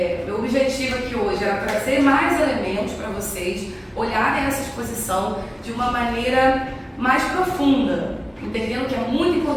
meu objetivo aqui hoje era trazer mais elementos para vocês olharem essa exposição de uma maneira mais profunda, entendendo que é muito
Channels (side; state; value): both; identical; correlation 1.00